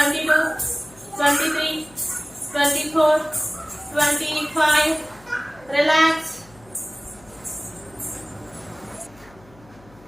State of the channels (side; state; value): left; noise; hum, 26 dB below the sound